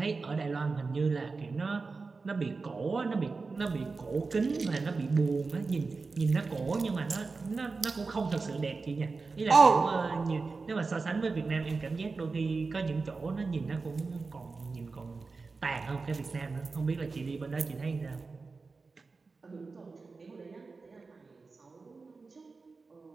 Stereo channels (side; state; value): left; quieter; 4.2 dB